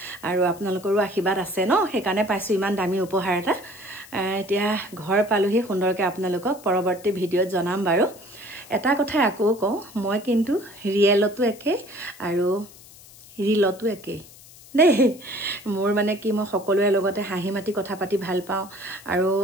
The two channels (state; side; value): noise; left; hiss, 21 dB below the sound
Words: আৰু আপোনালোকৰো আশীৰ্বাদ আছে ন সেইকাৰণে পাইছোঁ ইমান দামী উপহাৰ এটা এতিয়া ঘৰ পালোহি সুন্দৰকৈ আপোনালোকক পৰৱৰ্তী ভিডিঅ'ত জনাম বাৰু এটা কথাই আকৌ কওঁ মই কিন্তু ৰিয়েলতো একে আৰু ৰিলতো একে দেই মোৰ মানে কি মই সকলোৰে লগতে হাঁহি মাতি কথা পাতি ভাল পাওঁ আৰু